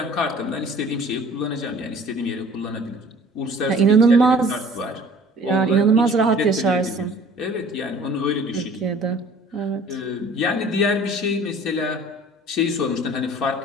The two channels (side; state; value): both; normal; correlation 0.49